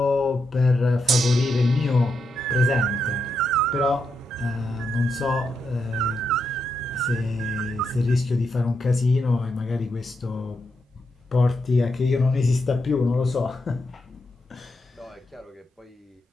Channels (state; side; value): normal; both; correlation 0.83